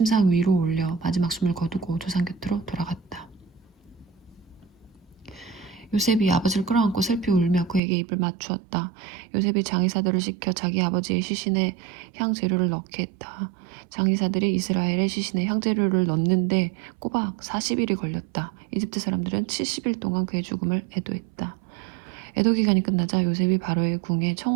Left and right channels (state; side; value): drops out; left; at 7.8 s